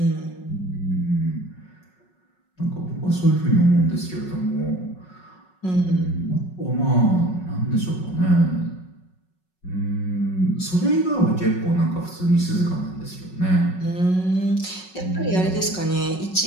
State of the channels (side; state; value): right; late; 5.4 ms